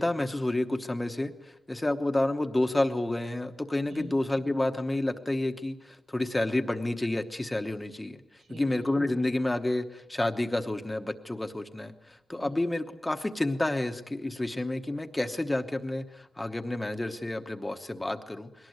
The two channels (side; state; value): both; normal; correlation 0.98